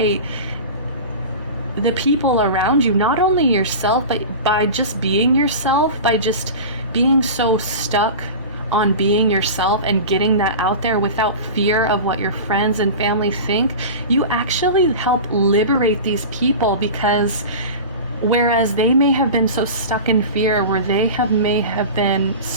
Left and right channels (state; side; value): inverted; both; correlation -0.31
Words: the people around you, not only yourself, but by just being yourself, by just being so stuck on being yourself and getting that out there without fear of what your friends and family think, you actually help liberate these people. Because whereas they may have been so stuck in fear, where they may have been